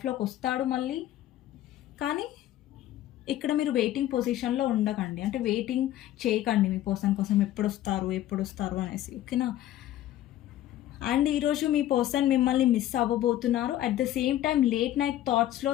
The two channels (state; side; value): quieter; right; 13.2 dB